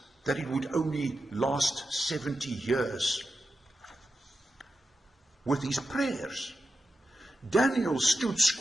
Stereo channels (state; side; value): normal; both; correlation 0.89